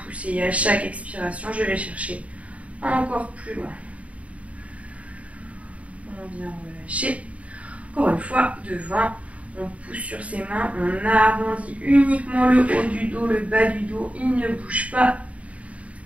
pousser. Et à chaque expiration, je vais chercher encore plus loin. On vient relâcher. Encore une fois, devant, on pousse sur ses mains, on arrondit uniquement le haut du dos, le bas du dos, il ne bouge pas.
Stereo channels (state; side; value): late; left; 0.066 ms